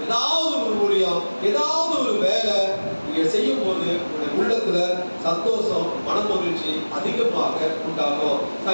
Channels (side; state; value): both; inverted; correlation -1.00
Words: ஏதாவது ஒரு ஊழியம், ஏதாவது ஒரு வேலை நீங்க செய்யும் போது உள்ளத்துல சந்தோஷம், மனமகிழ்ச்சி அதிகமாக உண்டாகும்.